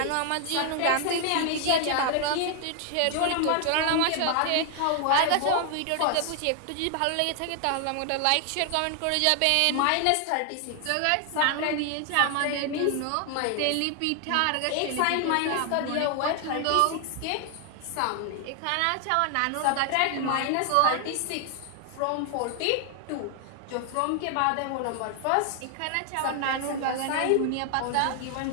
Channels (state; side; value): different; both; correlation 0.00